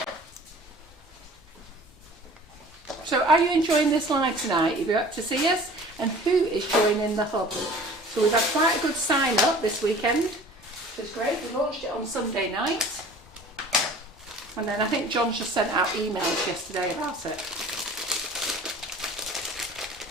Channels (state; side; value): normal; both; correlation 0.46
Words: So are you enjoying this live tonight? If you're up to see us, and who is joining the hub? So we've had quite a good sign up this weekend, which is great. We launched it on Sunday night, and then I think John just sent out emails yesterday about it.